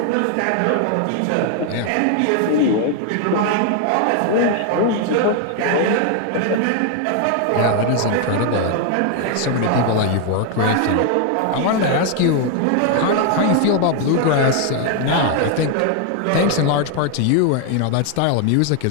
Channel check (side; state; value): both; different; correlation 0.00